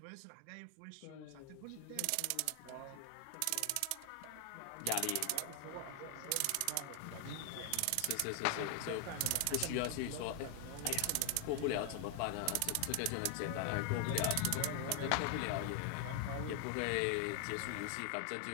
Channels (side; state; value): both; different; correlation 0.00